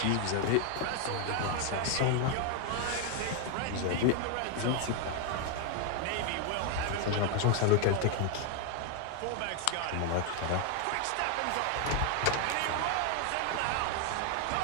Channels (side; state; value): both; different; correlation 0.00